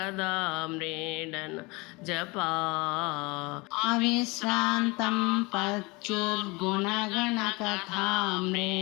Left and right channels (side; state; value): right; quieter; 25.8 dB